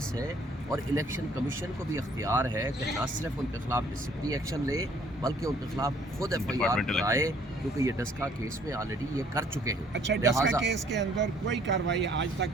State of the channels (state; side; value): normal; both; correlation 0.60